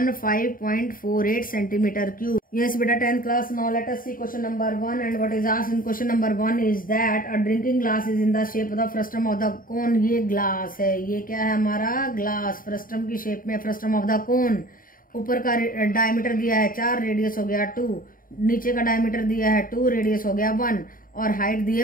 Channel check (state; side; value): late; right; 0.41 ms